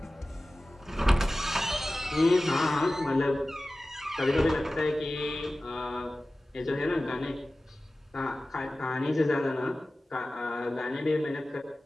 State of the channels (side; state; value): both; normal; correlation 0.96